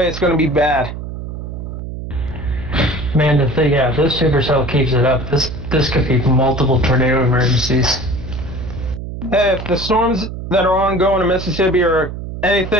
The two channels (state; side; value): noise; right; hum, 8 dB below the sound